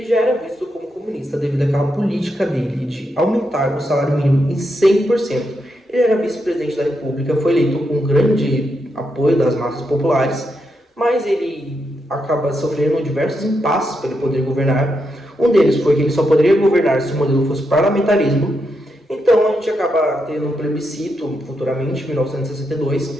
já era visto como comunista devido àquela política dele de aumentar o salário mínimo em 100%. Ele era vice-presidente da República, foi eleito com grande apoio das massas populares, mas ele acaba sofrendo diversos impasses para ele poder governar. Um deles foi que ele só poderia governar se o modelo fosse parlamentarismo. Então a gente acaba tendo um plebiscito futuramente, em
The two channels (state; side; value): normal; both; correlation 0.83